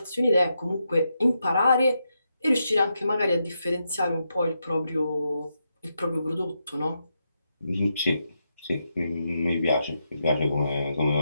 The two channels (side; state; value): both; inverted; correlation -0.84